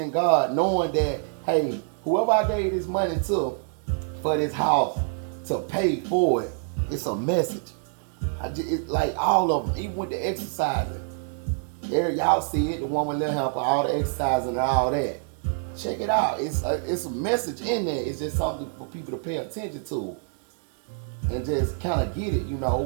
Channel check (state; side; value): silent; left; 61 dB below the other